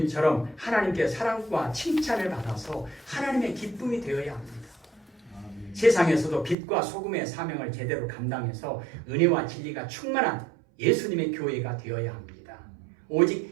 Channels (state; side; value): drops out; left; at 6.6 s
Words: 하나님께 사랑과 칭찬을 받아서 하나님의 기쁨이 되어야 합니다. 세상에서도 빛과 소금의 사명을 제대로 감당해서 은혜와 진리가 충만한 예수님의 교회가 되어야 합니다.